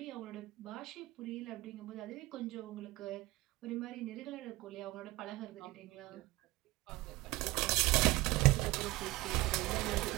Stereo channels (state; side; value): quieter; left; 20.1 dB